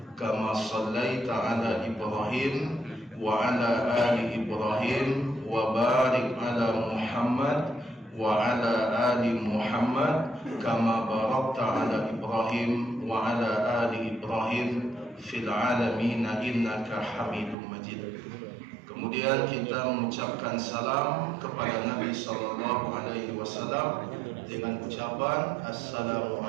kama shallaita ala Ibrahim wa ala ali Ibrahim wa barik ala Muhammad wa ala ali Muhammad kama barakta ala Ibrahim wa ala ali Ibrahim fil alamin innaka Hamidum Majid. Kemudian kita mengucapkan salam kepada Nabi sallallahu alaihi wasallam dengan ucapan assalamu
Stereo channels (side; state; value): left; drops out; at 17.6 s